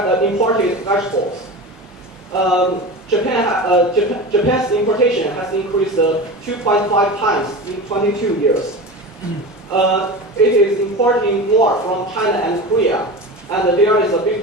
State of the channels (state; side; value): normal; both; correlation 0.29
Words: imported vegetables. Japan's importation has increased 2.5 times in 22 years. It is importing more from China and Korea, and there is a